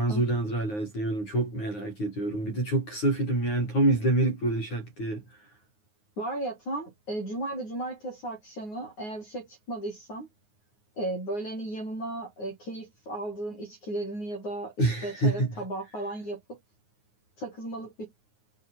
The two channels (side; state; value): right; late; 9.5 ms